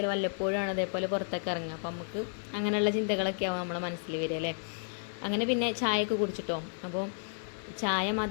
വല്ലപ്പോഴാണ് അതേപോലെ പുറത്തൊക്കെ ഇറങ്ങുക. അപ്പം നമുക്ക് അങ്ങനെയുള്ള ചിന്തകളൊക്കെ ആവും നമ്മളെ മനസ്സിൽ വരിക അല്ലേ. അങ്ങനെ പിന്നെ ചായയൊക്കെ കുടിച്ചിട്ടോ. അപ്പോൾ ചായ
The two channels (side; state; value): right; silent; 56 dB below the other